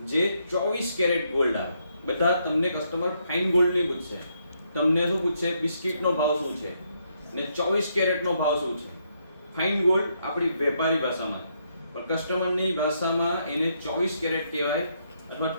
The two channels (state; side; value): inverted; both; correlation -0.76